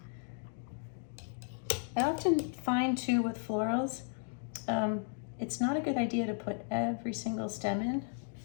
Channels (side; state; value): right; silent; 55 dB below the other